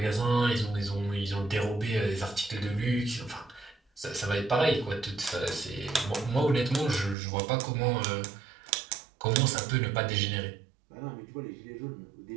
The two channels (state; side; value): drops out; left; at 7.2 s